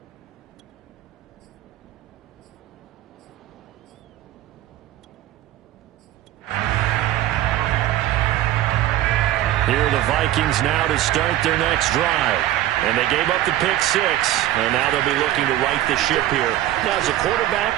Here are the Vikings now to start their next drive. And they gave up the pick six, and now they'll be looking to right the ship here. Now, as a quarterback,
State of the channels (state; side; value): quieter; left; 13.8 dB